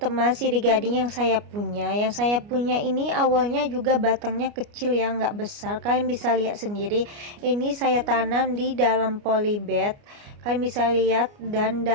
sirih gading yang saya punya. Yang saya punya ini awalnya juga batangnya kecil ya, nggak besar. Kalian bisa lihat sendiri. Ini saya tanam di dalam polybag. Kalian bisa lihat, dan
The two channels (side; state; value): left; late; 29 ms